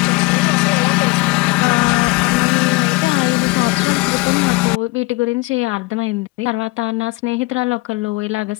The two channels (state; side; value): quieter; right; 23.9 dB